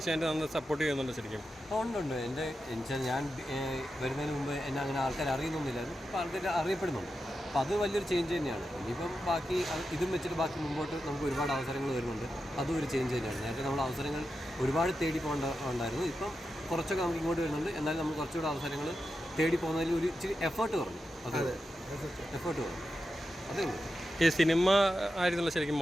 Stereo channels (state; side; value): normal; both; correlation 0.89